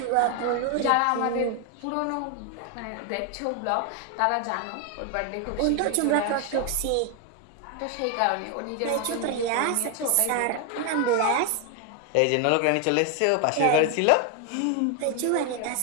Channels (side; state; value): both; different; correlation 0.01